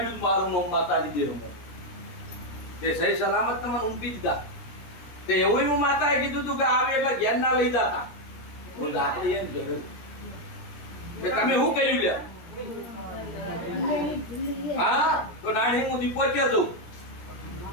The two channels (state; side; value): late; right; 17 ms